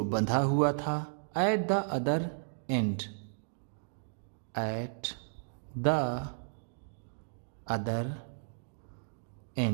बंधा हुआ था। At the other end, at the other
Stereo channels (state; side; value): silent; left; digital silence